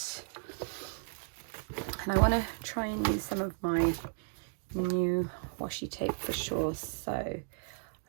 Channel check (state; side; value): silent; left; digital silence